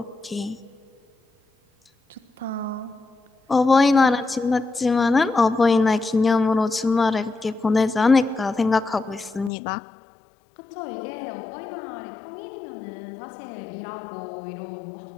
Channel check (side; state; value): right; drops out; at 9.5 s